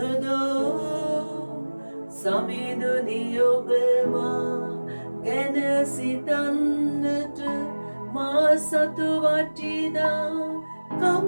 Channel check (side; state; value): both; inverted; correlation -1.00